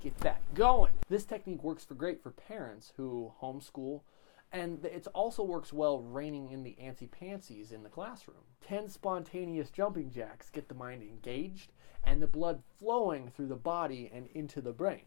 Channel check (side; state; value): right; silent; 53 dB below the other